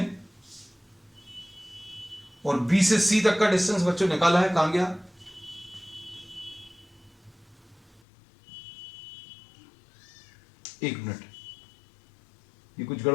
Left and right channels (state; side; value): drops out; right; at 8.0 s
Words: और B से C तक का डिस्टेंस बच्चों निकाला है, कहां गया, एक मिनट, ये कुछ